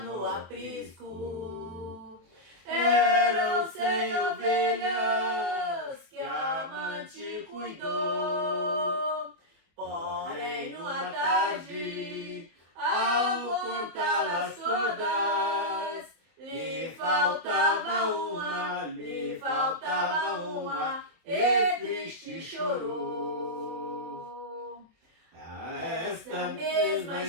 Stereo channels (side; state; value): left; late; 24 ms